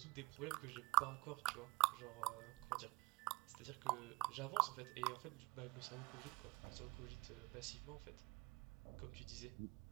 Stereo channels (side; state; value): left; quieter; 23.4 dB